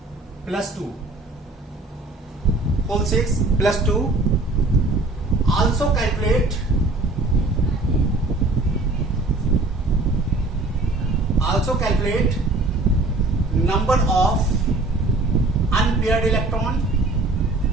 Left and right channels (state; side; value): quieter; left; 3.0 dB